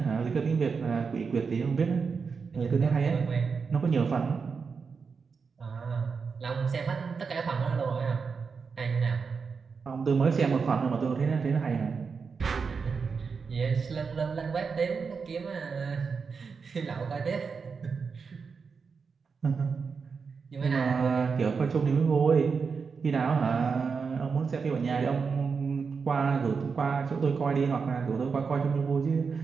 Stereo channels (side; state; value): left; quieter; 5.4 dB